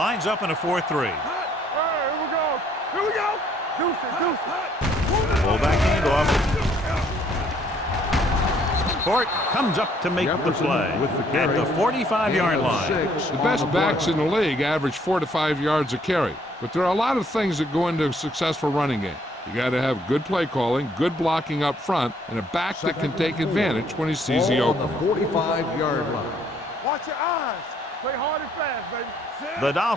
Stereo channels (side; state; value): both; normal; correlation 0.65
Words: up in a 4-3. All right, here we go. Here we go. Deuce. Full back handoff. Court comes up to make the Jefferson play with the at carry. the 45-yard line. The best backs in the league average 4 to 5 yards a carry. But there are a lot of things that go into a successful running game. You got to have good play calling, good blocking up front, and a back that can take advantage when he sees the Ball on opening. the 45-yard line. Watch your eyes. Play hard and fast, baby. The